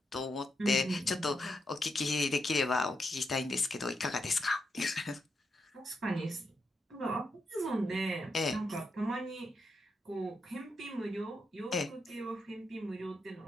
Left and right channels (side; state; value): both; normal; correlation 0.83